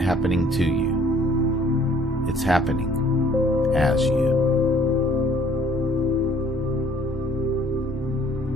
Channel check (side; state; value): both; normal; correlation 0.57